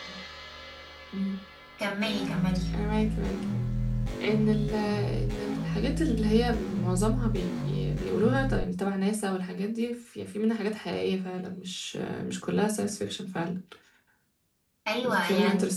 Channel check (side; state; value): both; identical; correlation 1.00